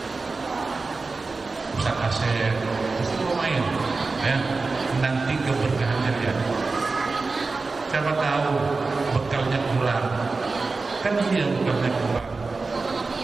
Ustaz Asep itu lumayan, ya, nanti keberkahannya ya. Siapa tahu bekalnya kurang, kan dia bekalnya kurang.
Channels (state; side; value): quieter; left; 3.9 dB